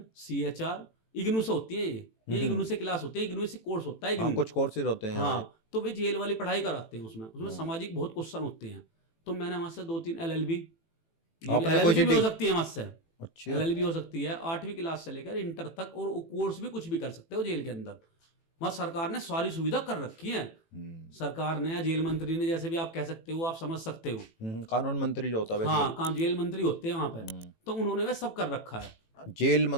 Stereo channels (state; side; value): late; right; 18 ms